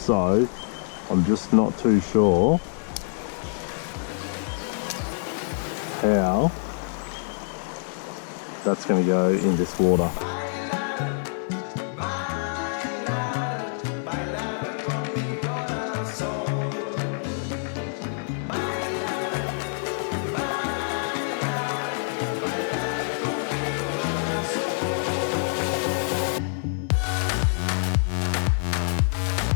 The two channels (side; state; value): right; silent; digital silence